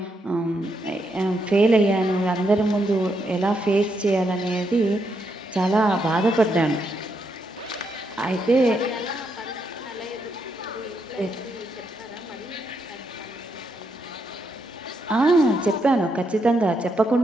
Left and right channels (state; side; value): normal; both; correlation 0.79